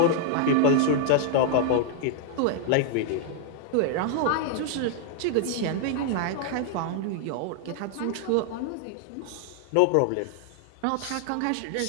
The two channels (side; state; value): both; different; correlation -0.01